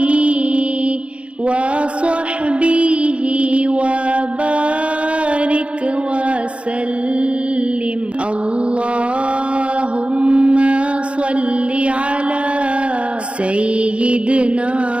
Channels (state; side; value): late; left; 0.060 ms